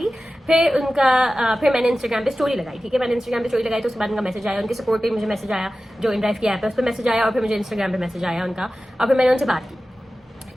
फिर मैंने इंस्टाग्राम पे स्टोरी लगाई, ठीक है। मैंने इंस्टाग्राम पे स्टोरी लगाई तो उसके बाद उनका मैसेज आया, उनके सपोर्ट पे मुझे मैसेज आया, जो इनड्राइव की ऐप है उस पर मैसेज आया, और फिर मुझे इंस्टाग्राम पे मैसेज आया उनका, और फिर मैंने उनसे बात की,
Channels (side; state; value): both; normal; correlation 0.95